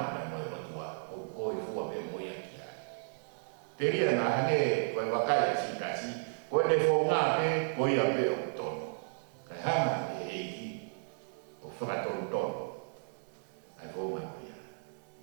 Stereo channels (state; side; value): silent; left; digital silence